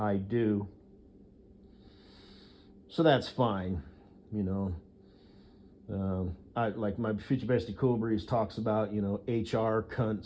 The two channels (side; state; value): both; identical; correlation 1.00